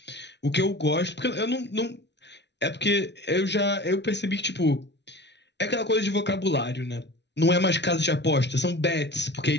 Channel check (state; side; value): late; right; 0.50 ms